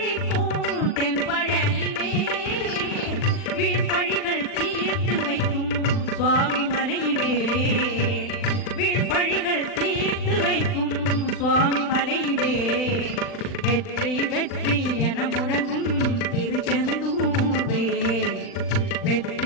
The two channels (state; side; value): late; right; 40 ms